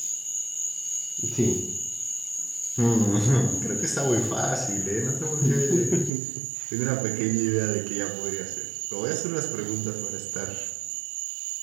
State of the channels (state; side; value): drops out; left; at 6.1 s